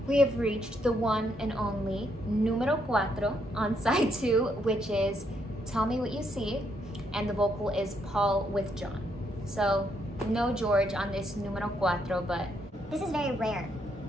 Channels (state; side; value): normal; both; correlation 0.75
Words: We have reached the one and only numero cuatro on side 2, which is Tell Me What You See, and the vocal is Paul with John. So no George on this numero cuatro, but This is very rare,